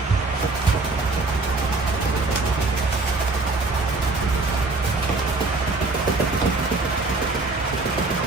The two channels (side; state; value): left; quieter; 3.5 dB